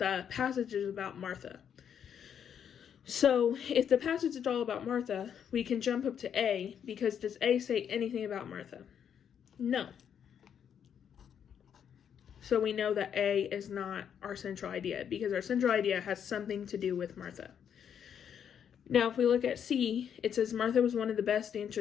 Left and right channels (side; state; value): right; quieter; 8.4 dB